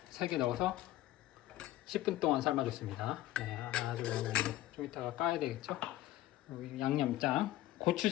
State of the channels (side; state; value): right; quieter; 14.9 dB